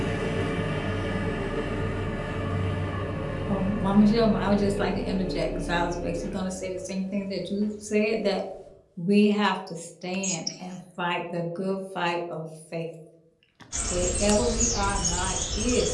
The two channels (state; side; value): identical; both; correlation 1.00